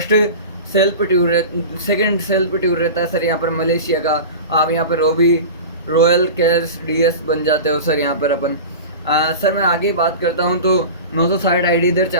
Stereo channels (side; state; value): both; inverted; correlation -0.32